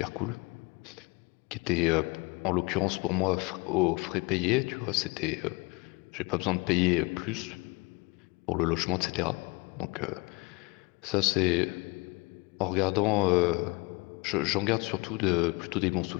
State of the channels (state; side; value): quieter; right; 27.2 dB